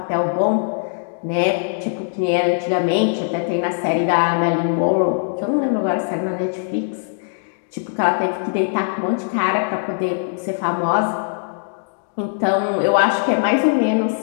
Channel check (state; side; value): silent; right; digital silence